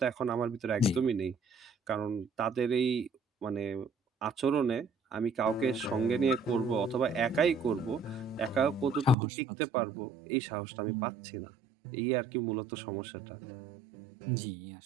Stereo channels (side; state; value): left; drops out; at 9.2 s